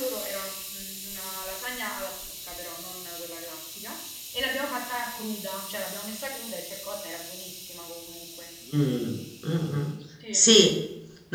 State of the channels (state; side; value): identical; both; correlation 1.00